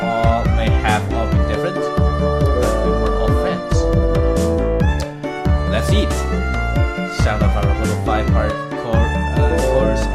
have all been different, but we were all friends. Let's eat! The sound of our little five-part chorus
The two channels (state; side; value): identical; both; correlation 1.00